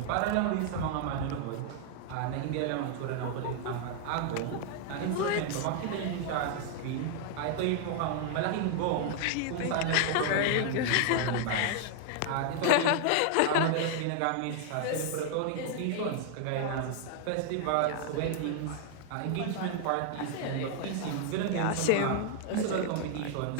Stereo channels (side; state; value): both; different; correlation 0.00